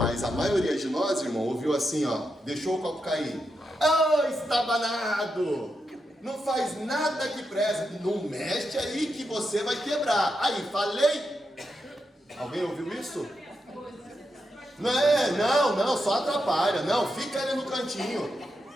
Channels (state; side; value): normal; both; correlation 0.85